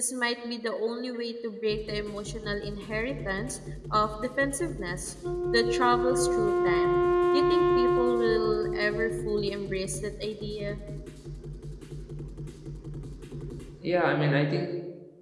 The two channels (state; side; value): identical; both; correlation 1.00